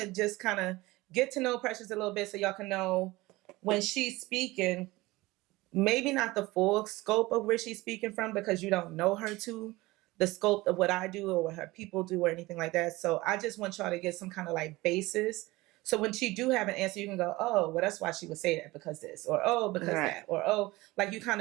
just kind of get to know Precious a little bit so y'all can know when she's speaking, maybe not the full scope of where she's speaking from because you don't know her to the scope of what I do or what her people do or anything like that. So I just want y'all to get some kind of like basis. So when she do have an answer, you can go, oh, well, that's why she would say that because this, or oh, because that, or oh, like you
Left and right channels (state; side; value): quieter; left; 20.4 dB